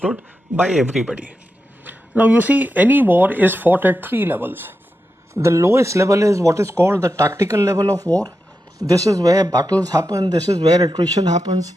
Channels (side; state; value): both; normal; correlation 0.89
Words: by everybody. Now, you see, any war is fought at three levels. The lowest level is what is called the tactical level of war. This is where battles happen. This is where attrition happens.